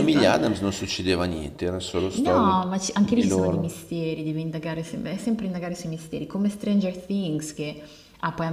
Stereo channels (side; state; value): both; identical; correlation 1.00